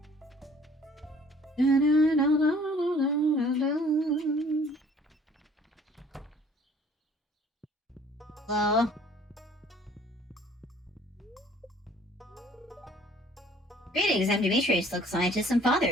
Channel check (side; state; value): both; normal; correlation 0.54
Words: Hello? Greetings, I'm Demetrius, local scientist and